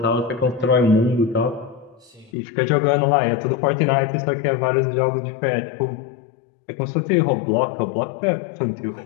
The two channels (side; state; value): right; drops out; at 2.3 s